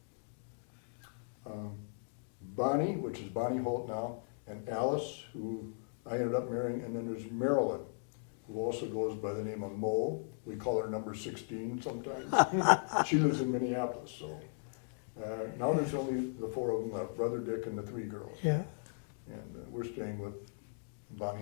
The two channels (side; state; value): right; silent; digital silence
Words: Bonnie, which is Bonnie Holt now, and Alice, who I ended up marrying, and then there's Marilyn, who also goes by the name of Mo. We call her number 16 sometimes. She lives in Minneapolis, so now there's only the 4 of them left, Brother Dick and the 3 girls. So. Yeah. And we're staying with Bonnie